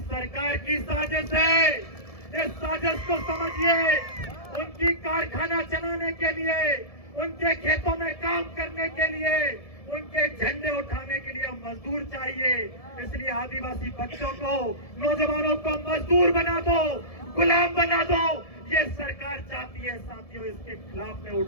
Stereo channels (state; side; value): late; right; 1.7 ms